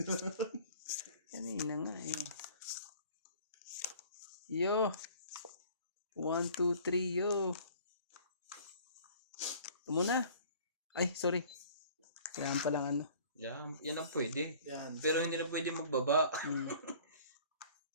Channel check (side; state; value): both; inverted; correlation -0.49